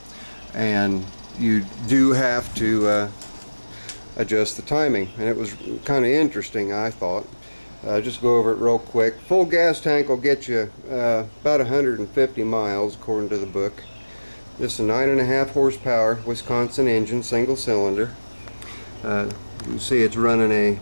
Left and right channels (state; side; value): inverted; both; correlation -1.00